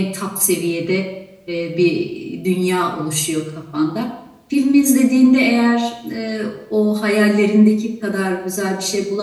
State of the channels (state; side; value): identical; both; correlation 1.00